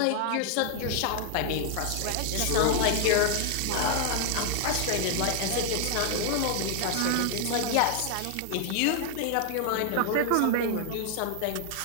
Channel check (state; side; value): different; both; correlation 0.00